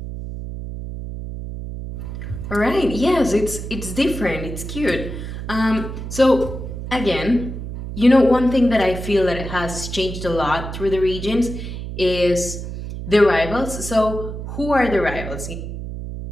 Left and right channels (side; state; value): right; noise; hum, 7 dB below the sound